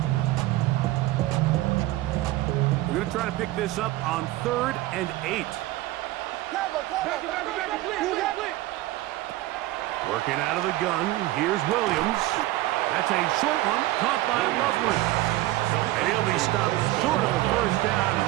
We're going to try to pick this up on 3rd and 8. Working out of the gun, here's Williams. That's a short one, caught by Loveland. And he'll be stopped short of the 1st down,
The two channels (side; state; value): left; quieter; 17.1 dB